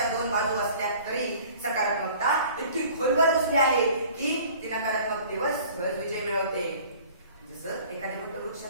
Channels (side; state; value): both; inverted; correlation -0.48